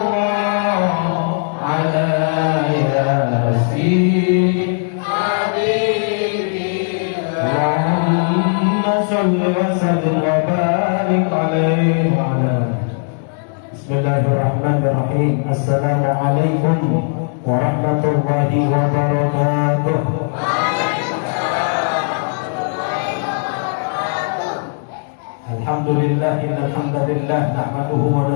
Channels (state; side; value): silent; right; 64 dB below the other